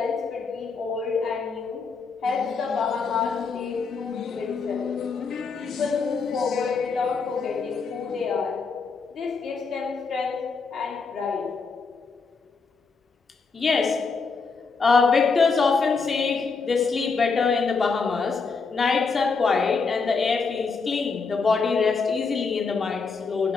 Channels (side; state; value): right; quieter; 4.8 dB